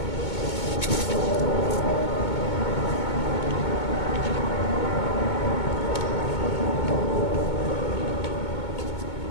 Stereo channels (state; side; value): late; right; 2.2 ms